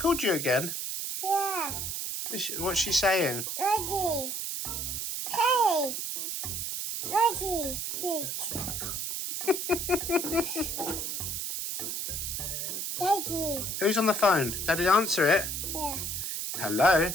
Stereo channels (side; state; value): right; noise; hiss, 3 dB below the sound